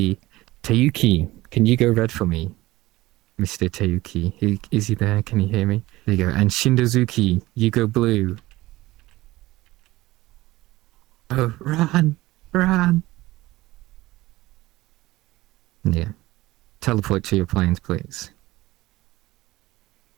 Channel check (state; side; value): quieter; left; 18.4 dB